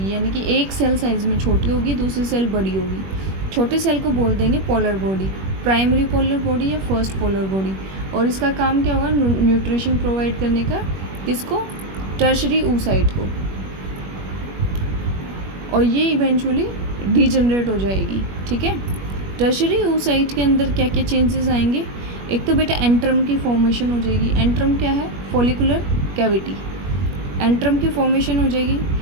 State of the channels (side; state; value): left; late; 21 ms